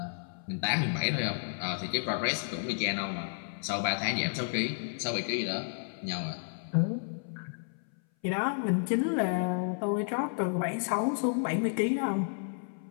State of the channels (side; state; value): right; silent; 57 dB below the other